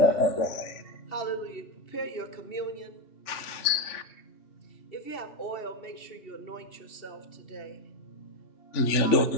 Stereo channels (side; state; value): right; late; 3.4 ms